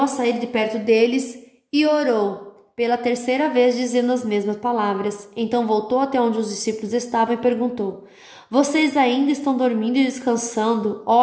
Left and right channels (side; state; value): both; identical; correlation 1.00